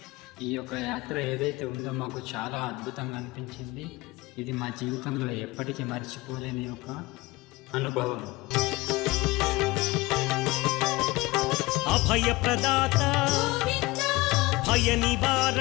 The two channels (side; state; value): right; quieter; 21.2 dB